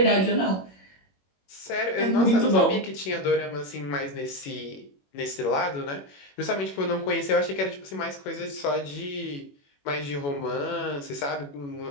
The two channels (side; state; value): right; late; 21 ms